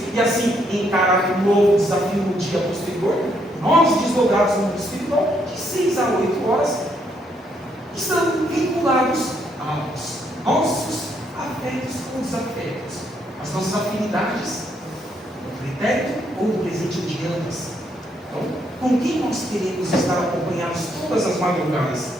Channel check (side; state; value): both; normal; correlation 0.73